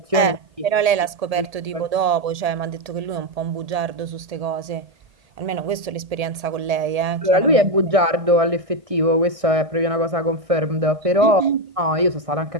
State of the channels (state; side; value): late; left; 1.8 ms